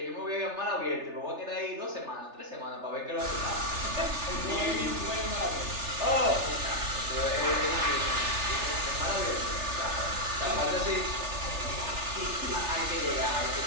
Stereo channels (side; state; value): left; late; 3.3 ms